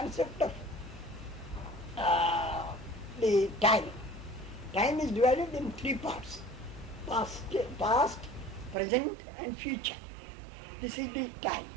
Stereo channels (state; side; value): drops out; left; at 8.8 s